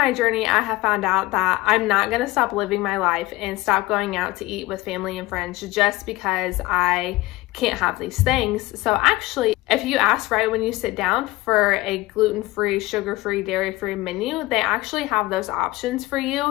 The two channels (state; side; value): quieter; right; 19.5 dB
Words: journey, I have found out that I'm not gonna stop living my life and stop going out to eat with family and friends just because I can't have these things. So actually, if you ask right when you sit down for a gluten-free, sugar-free, dairy-free menu, they actually have those options for